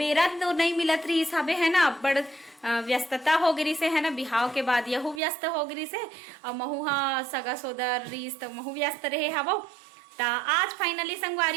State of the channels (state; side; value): drops out; left; at 5.2 s